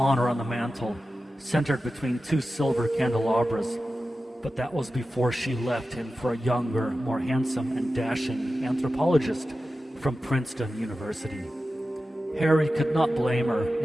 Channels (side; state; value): both; normal; correlation 0.93